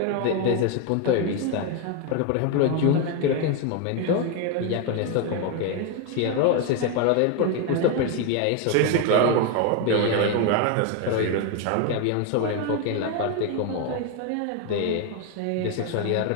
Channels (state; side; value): different; both; correlation 0.01